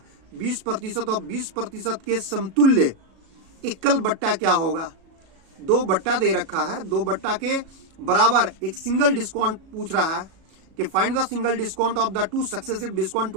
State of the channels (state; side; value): late; left; 37 ms